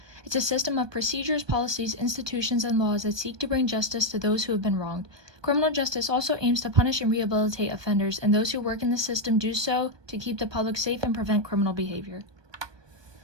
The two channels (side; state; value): left; late; 1.2 ms